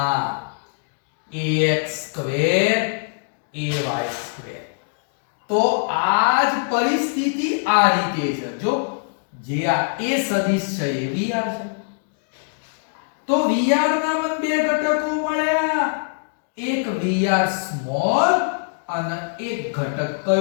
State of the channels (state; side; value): silent; right; digital silence